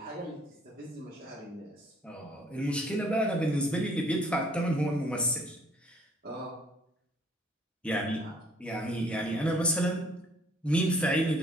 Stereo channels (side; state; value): both; normal; correlation 0.60